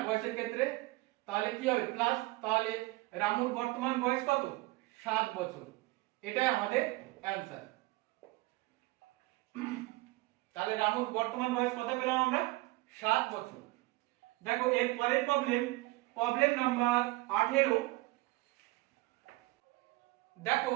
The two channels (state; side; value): quieter; left; 21.4 dB